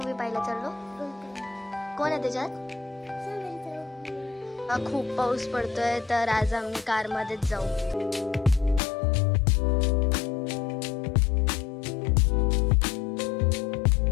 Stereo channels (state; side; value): drops out; right; at 8.8 s